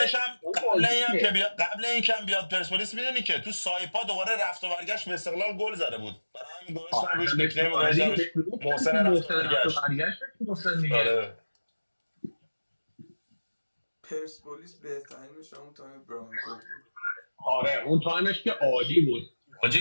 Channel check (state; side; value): inverted; both; correlation -1.00